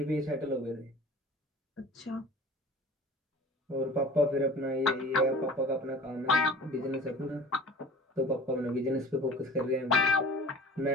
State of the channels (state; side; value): normal; both; correlation 0.42